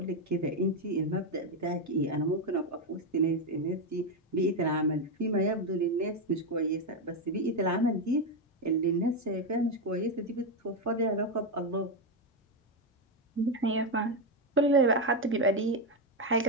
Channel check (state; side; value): normal; both; correlation 0.07